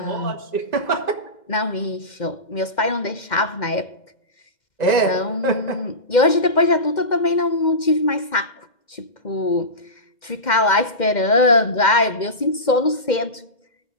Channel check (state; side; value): late; right; 2.1 ms